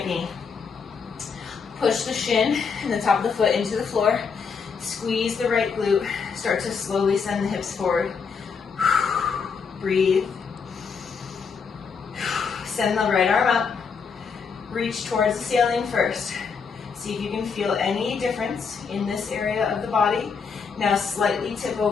knee. Push the shin and the top of the foot into the floor. Squeeze the right glute. Start to slowly send the hips forward. Breathe. Send the right arm up. Reach towards the ceiling first. See if you can feel any difference in this area of the body. Now slightly tip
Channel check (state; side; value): quieter; right; 5.7 dB